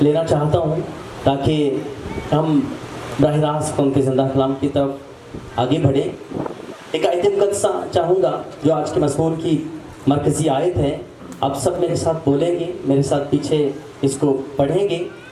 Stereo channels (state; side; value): identical; both; correlation 1.00